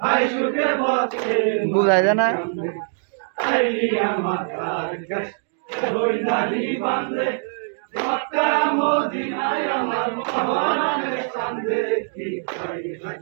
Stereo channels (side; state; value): left; silent; digital silence